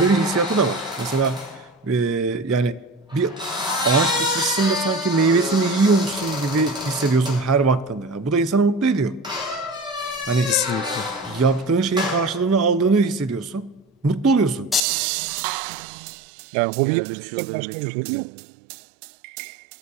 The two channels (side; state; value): left; drops out; at 14.8 s